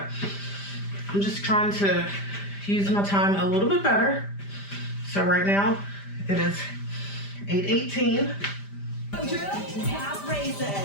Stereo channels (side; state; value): right; late; 5.0 ms